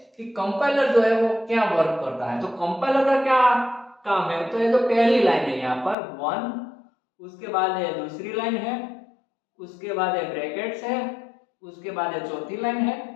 कि कंपाइलर जो है वो क्या वर्क करता है। तो कंपाइलर का क्या काम है, तो ये जो पहली लाइन है यहाँ पर 1, उसके बाद ये दूसरी लाइन है, उसके बाद ये ब्रैकेट्स है, उसके बाद ये चौथी लाइन है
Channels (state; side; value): drops out; right; at 6.0 s